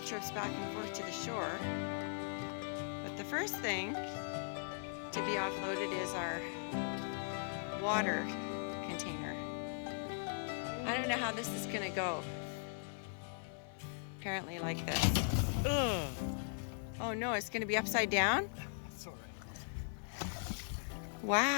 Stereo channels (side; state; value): right; silent; 51 dB below the other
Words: trips back and forth to the shore. But the first thing to be offloaded is our water container. I don't know how this is going to go. Apparently like this. Ugh. Oh no, it's going to be upside down? That's all right.